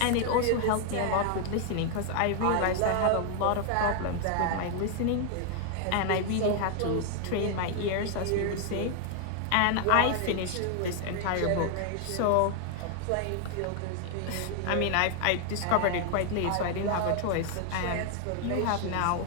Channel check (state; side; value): different; both; correlation 0.00